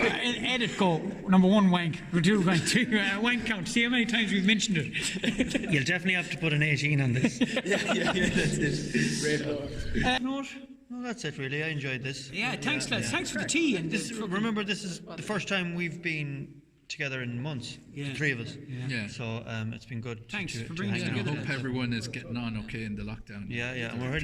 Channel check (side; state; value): both; identical; correlation 1.00